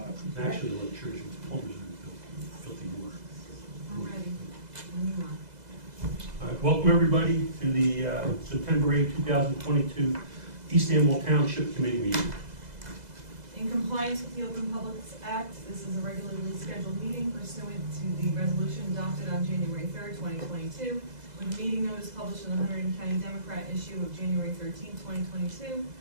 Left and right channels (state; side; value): late; left; 2.0 ms